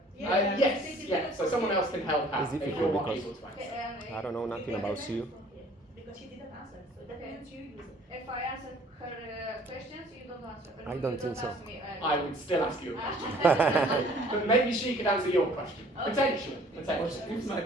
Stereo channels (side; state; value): both; normal; correlation 0.54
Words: Yes, yeah, so someone else can help out It's if difficult you're not because- able to answer. Okay, I don't know nothing about you. Because she didn't answer, so that means you use it. If I answer her questions, you don't answer. I You don't think so. ask me, I would still ask you a question. But maybe she could answer your question. Potentially. But Potentially. if my